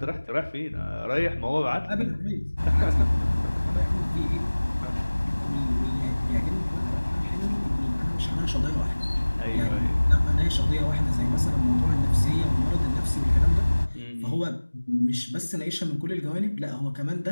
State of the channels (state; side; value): inverted; both; correlation -1.00